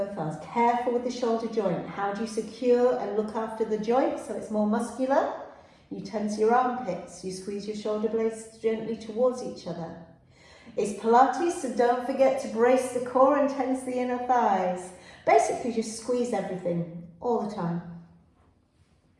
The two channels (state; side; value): identical; both; correlation 1.00